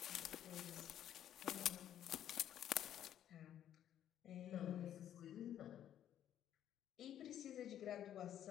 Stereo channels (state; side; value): quieter; right; 10.8 dB